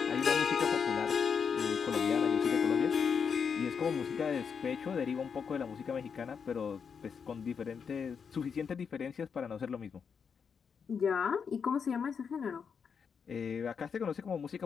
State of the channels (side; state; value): right; quieter; 6.4 dB